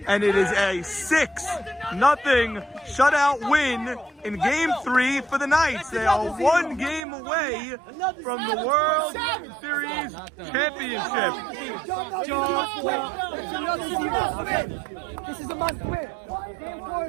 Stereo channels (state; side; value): drops out; left; at 7.1 s